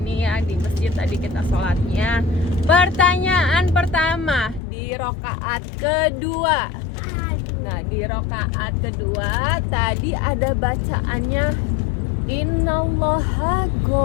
ya di masjid tadi kita sholatnya. Pertanyaan pertama di rokaat kedua. Nah di rokaat kedua tadi ada bacaannya Innallaha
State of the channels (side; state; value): right; drops out; at 4.6 s